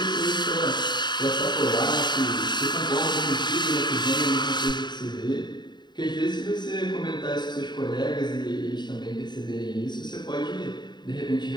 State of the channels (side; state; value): right; late; 0.21 ms